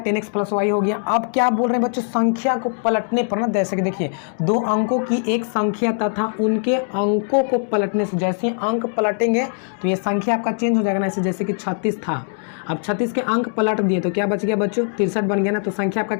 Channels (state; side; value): silent; right; digital silence